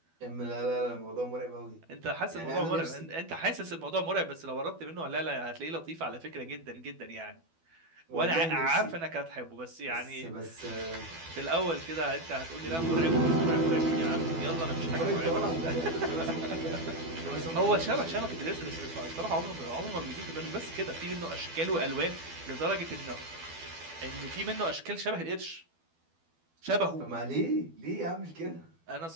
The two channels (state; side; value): late; left; 12 ms